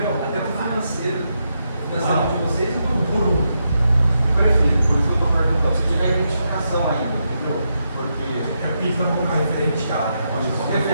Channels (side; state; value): both; inverted; correlation -0.83